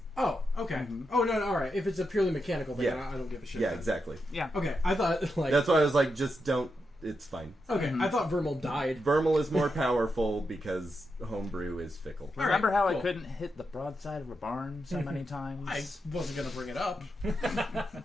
Oh, okay. Oh no, all right. If it's a purely mechanical thing, Yeah. I don't give a shit. Yeah, then. exactly. Yeah. Okay, I thought like. That's why I was like, just don't. It's fine. Okay, I thought Vermal died. Vermal is more powerful because homebrew is fickle. All Remember right, how cool. I couldn't hit the broadside of a barn so many times? I wasn't gonna bring it up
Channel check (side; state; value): both; normal; correlation 0.86